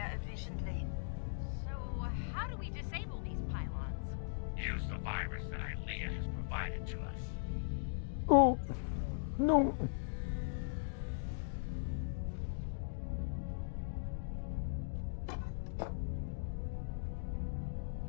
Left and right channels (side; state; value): right; silent; digital silence